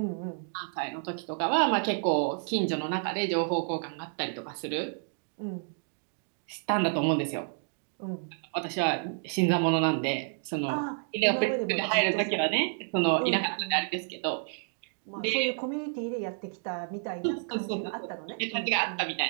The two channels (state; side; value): silent; left; 56 dB below the other